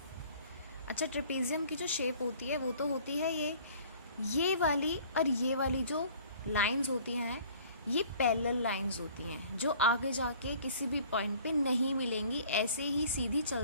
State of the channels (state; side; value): inverted; both; correlation -0.51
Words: अच्छा, ट्रेपेजियम की जो शेप होती है वो तो होती है ये वाली, और ये वाली जो लाइंस होती हैं ये पैरेलल लाइंस होती हैं, जो आगे जाके किसी भी पॉइंट पे नहीं मिलेंगी, ऐसे ही सीधी